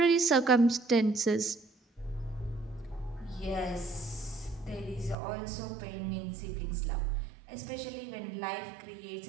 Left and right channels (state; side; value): drops out; left; at 5.2 s